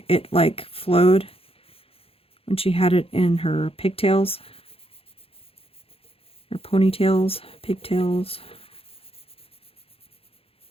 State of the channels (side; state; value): right; late; 0.27 ms